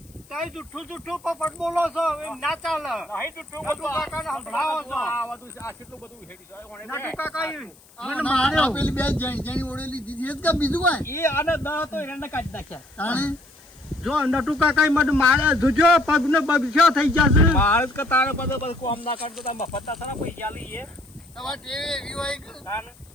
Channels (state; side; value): noise; left; hiss, 27 dB below the sound